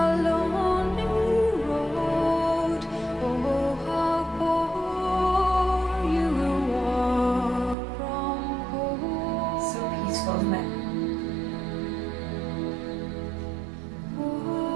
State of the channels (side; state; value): left; drops out; at 7.8 s